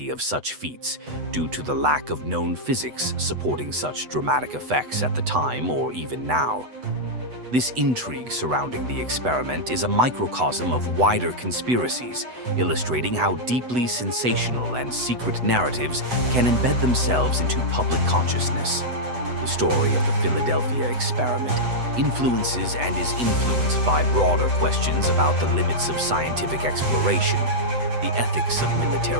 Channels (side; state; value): left; late; 8.0 ms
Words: of such feats due to the lack of known physics supporting such dramatic effects at the time or even now. This intrigue surrounding the experiment is a microcosm of wider conspiracies, illustrating how deeply sensational and secret narratives can embed themselves into public consciousness. The story of the Philadelphia experiment influences and is influenced by broader questions about the limits of scientific exploration, the ethics of